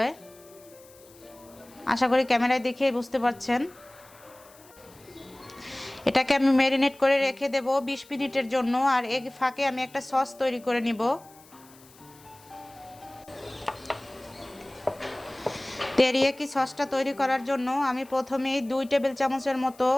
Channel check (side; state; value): left; noise; hiss, 25 dB below the sound